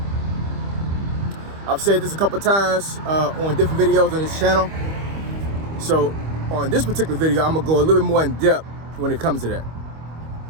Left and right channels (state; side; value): late; left; 25 ms